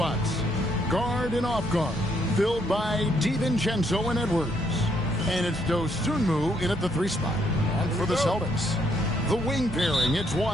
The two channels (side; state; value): both; normal; correlation 0.72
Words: Guard and off guard, filled by DiVincenzo and Edwards. And it's Dosunmu in at the 3 spot. And for the Celtics, the wing pairing, it's